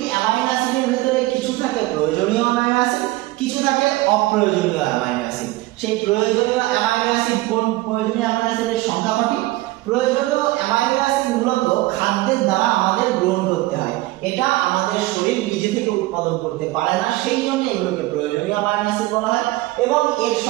অ্যামাইনো অ্যাসিডের ভিতরে কিছু থাকে প্রয়োজনীয় অ্যামাইনো অ্যাসিড, কিছু থাকে অপ্রয়োজনীয় অ্যামাইনো অ্যাসিড। সেই প্রয়োজনীয় অ্যামাইনো অ্যাসিড কোন প্রয়োজনীয় অ্যামাইনো অ্যাসিডের সংখ্যা কটি? প্রয়োজনীয় অ্যামাইনো অ্যাসিড মূলত খাদ্যের দ্বারা আমাদের গ্রহণ করতে হয়, এটা আমাদের শরীর নিজে থেকে উৎপাদন করতে পারে না, সেই জন্য এগুলোকে প্রয়োজনীয় অ্যামাইনো অ্যাসিড বলা হয়। এবং এর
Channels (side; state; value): left; quieter; 19.1 dB